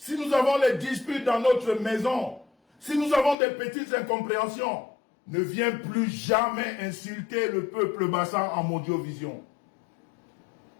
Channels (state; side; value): drops out; right; at 3.4 s